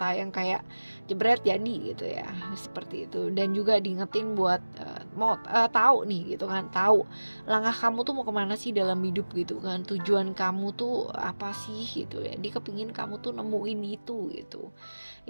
yang kayak jebret jadi gitu ya, seperti itu. Dan juga diingetin buat mau tahu nih gitu kan, tahu langkah kamu tuh mau kemana sih dalam hidup gitu kan, tujuan kamu tuh apa sih gitu ya. Dia kepingin kamu tuh nemuin itu gitu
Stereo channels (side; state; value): both; inverted; correlation -1.00